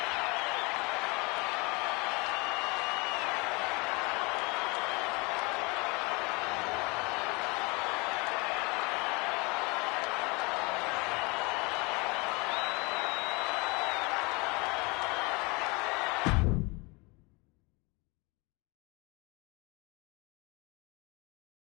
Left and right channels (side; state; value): right; quieter; 27.4 dB